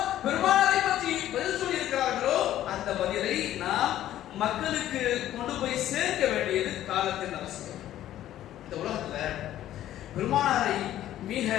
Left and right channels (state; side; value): quieter; right; 12.8 dB